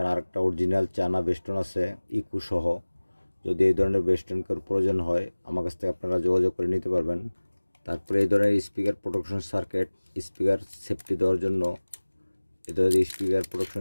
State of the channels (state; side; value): inverted; both; correlation -1.00